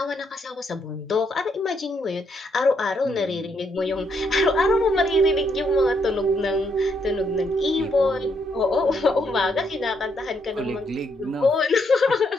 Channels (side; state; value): both; normal; correlation 0.75